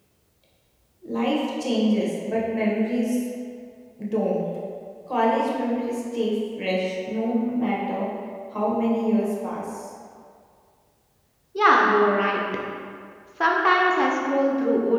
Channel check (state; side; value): identical; both; correlation 1.00